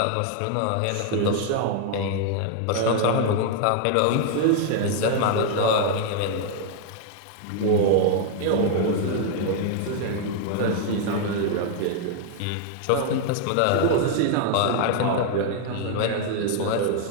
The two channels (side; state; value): both; different; correlation 0.00